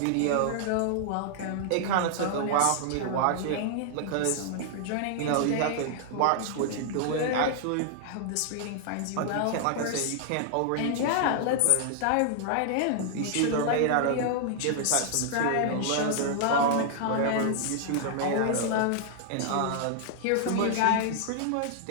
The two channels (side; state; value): both; different; correlation -0.01